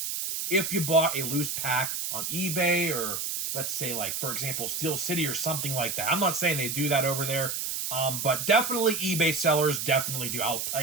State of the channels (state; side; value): noise; right; hiss, 3 dB below the sound